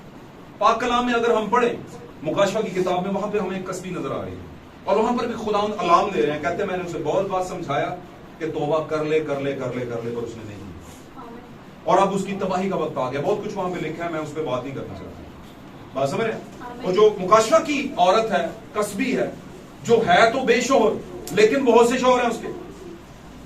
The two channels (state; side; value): identical; both; correlation 1.00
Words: पाक कलाम में अगर हम पढ़े मुकाशवा की किताब में, वहां पे हमें एक कसबी नजर आ रही है और वहां पर भी खुदावंद अलार्म दे रहे हैं, कहते हैं मैंने उसे बहुत बार समझाया कि तौबा कर ले कर ले कर ले कर ले, पर उसने नहीं, और अब उसकी तबाही का वक्त आ गया। बहुत कुछ वहां पे लिखा है, मैं उस पर बात नहीं करना चाहता। बात समझ रहे? और जो मुकाशवा की औरत है, कसबी है, जो है तो बेशोहर, लेकिन बहुत से शोहर हैं उसके,